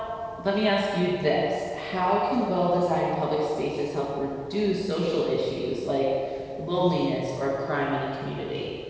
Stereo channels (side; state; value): both; identical; correlation 1.00